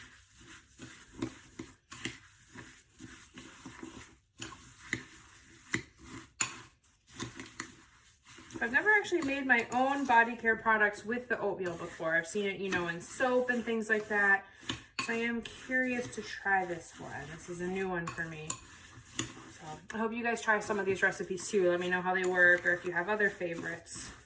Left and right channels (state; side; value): identical; both; correlation 1.00